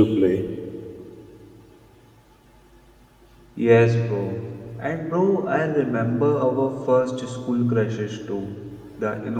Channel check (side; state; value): both; identical; correlation 1.00